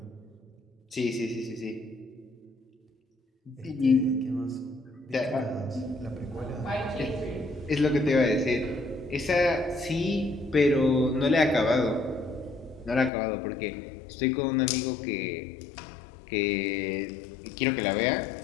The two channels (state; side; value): drops out; right; at 13.1 s